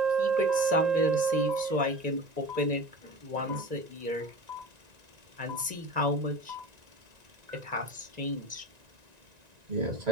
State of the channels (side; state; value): left; late; 1.9 ms